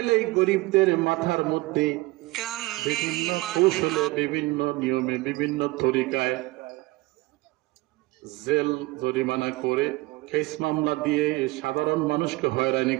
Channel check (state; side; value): quieter; left; 21.2 dB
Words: গরিবদের মাথার মধ্যে বিভিন্ন কৌশলে, বিভিন্ন নিয়মে, বিভিন্ন তরিকায় জেল জরিমানা করে, কেস মামলা দিয়ে সাধারণ মানুষকে হয়রানি